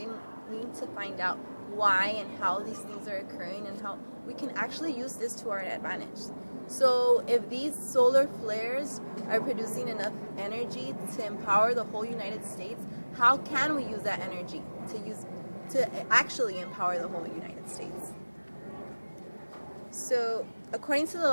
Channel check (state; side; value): inverted; both; correlation -1.00